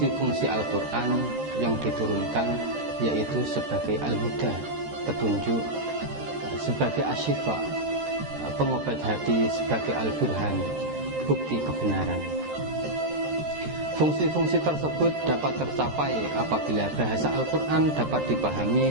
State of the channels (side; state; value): left; late; 13 ms